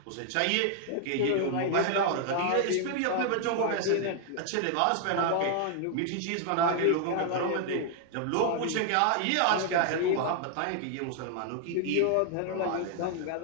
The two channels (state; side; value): different; both; correlation 0.00